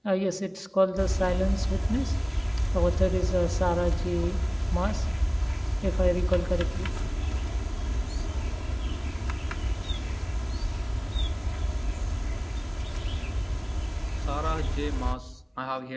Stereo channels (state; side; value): identical; both; correlation 1.00